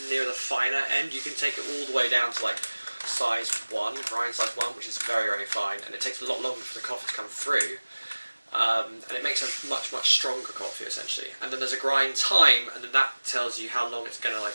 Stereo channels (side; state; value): both; inverted; correlation -1.00